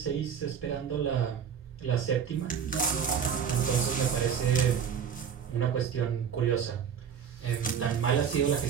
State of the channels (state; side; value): quieter; left; 7.7 dB